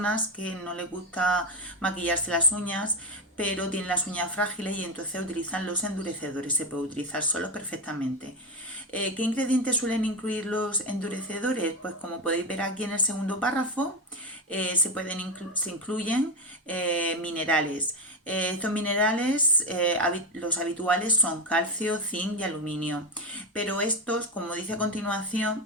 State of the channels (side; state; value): both; normal; correlation 0.14